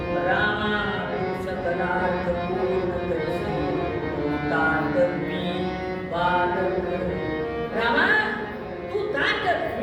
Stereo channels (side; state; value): both; identical; correlation 1.00